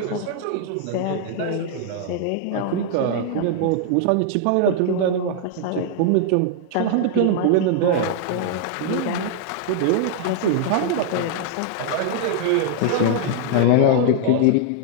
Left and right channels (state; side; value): different; both; correlation -0.01